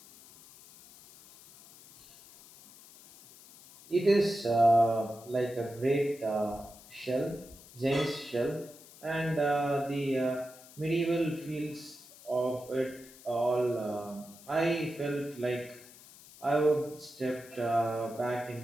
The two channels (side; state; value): left; noise; hiss, 21 dB below the sound